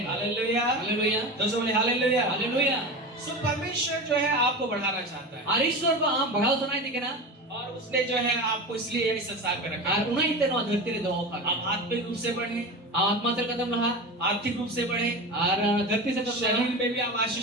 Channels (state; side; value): normal; both; correlation 0.27